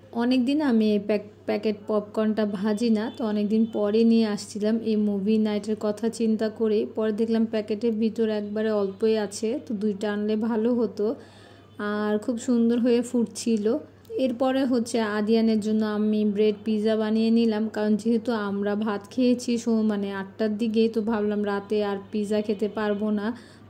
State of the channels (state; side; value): identical; both; correlation 1.00